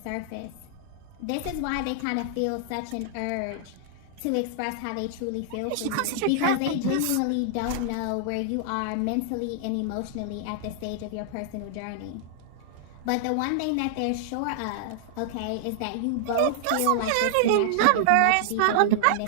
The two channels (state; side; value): different; both; correlation -0.01